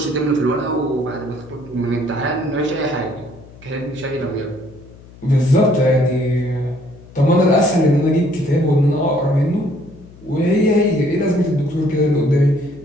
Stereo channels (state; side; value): noise; left; hum, 21 dB below the sound